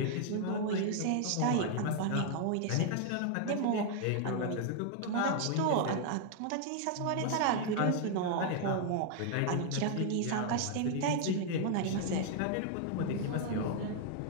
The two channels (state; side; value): different; both; correlation 0.00